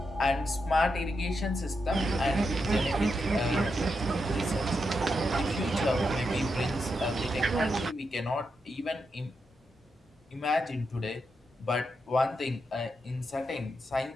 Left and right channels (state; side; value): normal; both; correlation 0.84